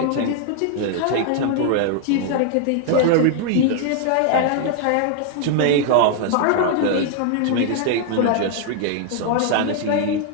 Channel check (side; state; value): both; different; correlation 0.00